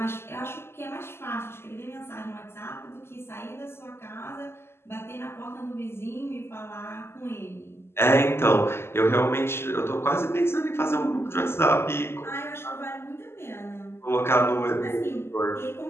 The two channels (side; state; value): right; late; 0.12 ms